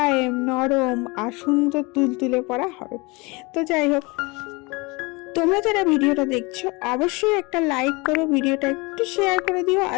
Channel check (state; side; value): quieter; right; 26.4 dB